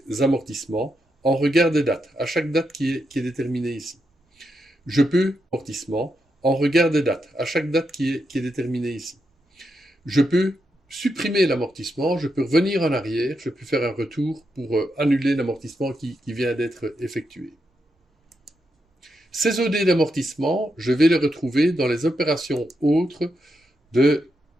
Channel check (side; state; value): both; normal; correlation 0.84